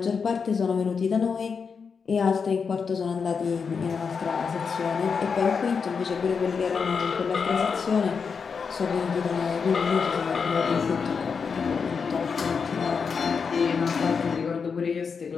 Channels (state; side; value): quieter; right; 5.7 dB